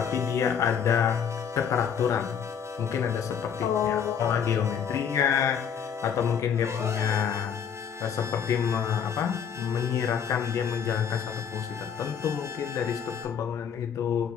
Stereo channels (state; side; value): quieter; right; 7.6 dB